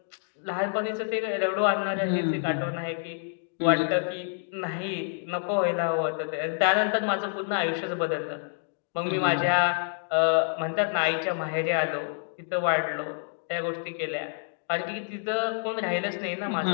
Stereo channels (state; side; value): silent; right; 59 dB below the other